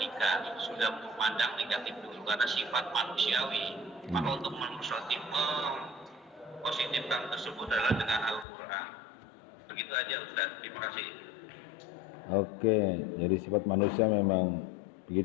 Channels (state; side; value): drops out; right; at 8.5 s